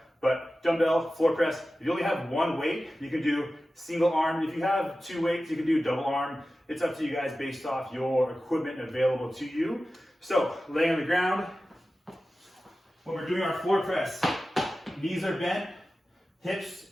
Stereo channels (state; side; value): normal; both; correlation 0.94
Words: But dumbbell floor press, if you only have one weight, you can do single arm. If you have 2 weights, you can do double arm. It's up to you guys based off your equipment available to you. So, lay on the ground. When we're doing our floor press, knees are bent, hips,